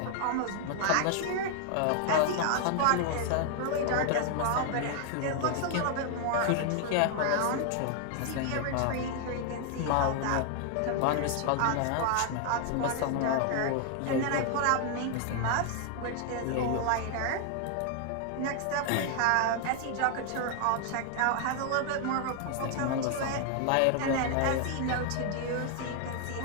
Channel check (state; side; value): different; both; correlation 0.00